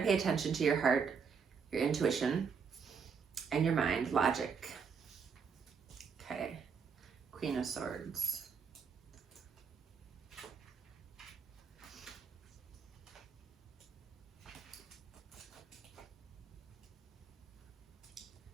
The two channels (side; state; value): left; quieter; 6.0 dB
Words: attention to your heart, your intuition. and your mind, logic. Okay, Queen of Swords.